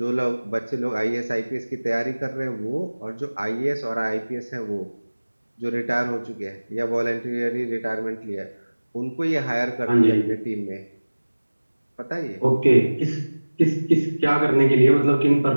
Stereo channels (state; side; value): inverted; both; correlation -1.00